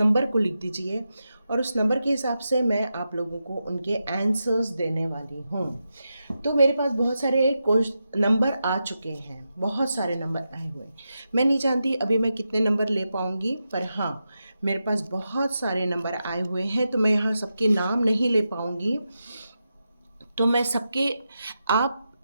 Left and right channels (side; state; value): both; inverted; correlation -0.88